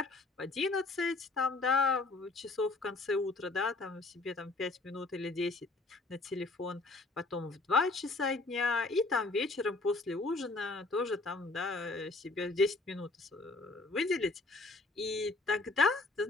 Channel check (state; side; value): quieter; right; 3.3 dB